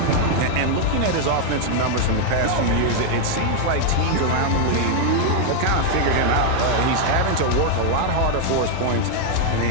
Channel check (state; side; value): different; both; correlation 0.00